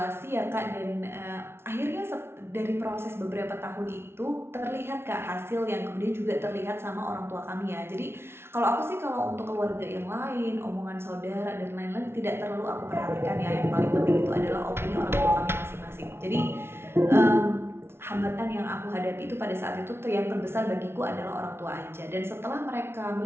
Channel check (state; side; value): late; left; 0.12 ms